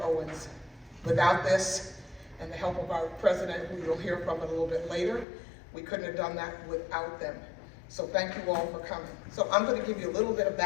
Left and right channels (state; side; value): drops out; right; at 5.2 s